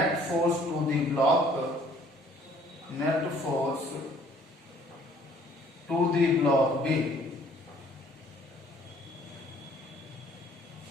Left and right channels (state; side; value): normal; both; correlation 0.58